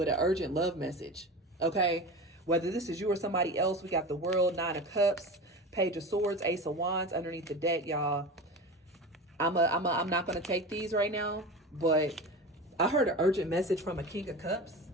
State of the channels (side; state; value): both; normal; correlation 0.30